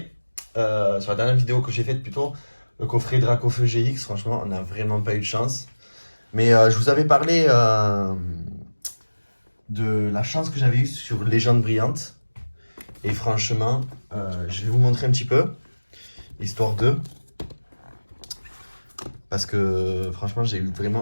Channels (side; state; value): both; inverted; correlation -1.00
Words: sur la dernière vidéo que j'ai faite plutôt, le coffret Dracofeu GX, franchement, on n'a vraiment pas eu de chance. Mais je vous avais parlé de la chance que j'avais eue sur Légende Brillante. Et franchement, je vais vous montrer un petit peu, histoire de. Parce que franchement, j'ai eu